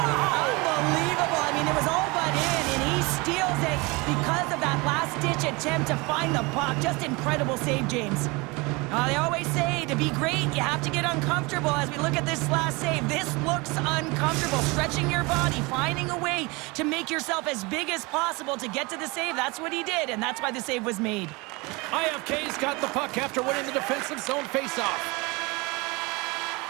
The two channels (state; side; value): quieter; left; 25.8 dB